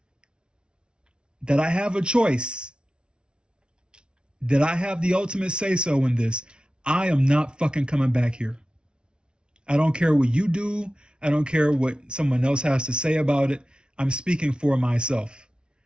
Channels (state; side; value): late; left; 0.056 ms